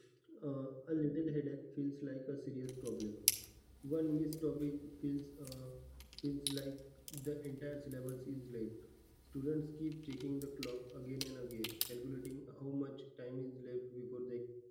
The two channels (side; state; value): both; identical; correlation 1.00